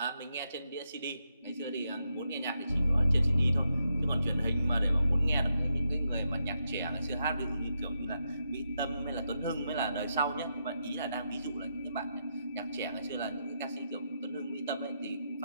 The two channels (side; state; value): both; inverted; correlation -0.83